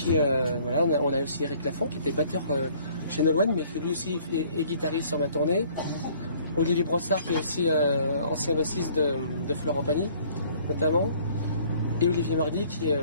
voilà, on a aussi Eric Lafont qui était batteur chez Nolwenn, mais qui lui aussi est guitariste sur ma tournée. Olivier Brossard qui est aussi ancien bassiste de Florent Pagny, notamment. Et Olivier Mardy qui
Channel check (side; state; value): both; inverted; correlation -0.57